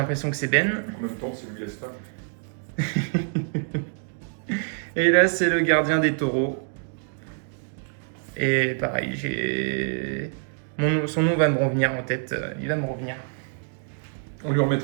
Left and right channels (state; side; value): silent; left; 61 dB below the other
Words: que c'est Ben. En même temps, c'est Louis Gaspard. Et là, c'est le gardien des taureaux. Et pareil, son nom va me revenir en tête. Il va me revenir. On lui